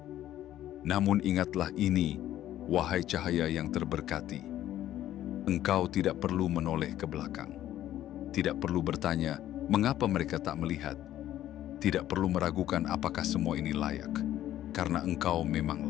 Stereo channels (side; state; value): right; quieter; 12.7 dB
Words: Namun ingatlah ini, wahai cahaya yang terberkati. Engkau tidak perlu menoleh ke belakang. Tidak perlu bertanya, mengapa mereka tak melihat. Tidak perlu meragukan apakah semua ini layak. Karena engkau memang